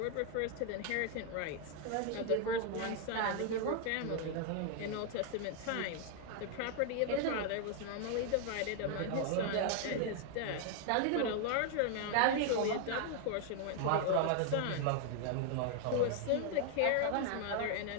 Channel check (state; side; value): different; both; correlation 0.00